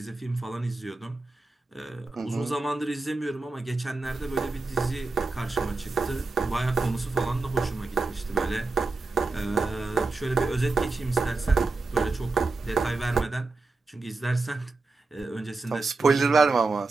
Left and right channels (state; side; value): quieter; left; 3.6 dB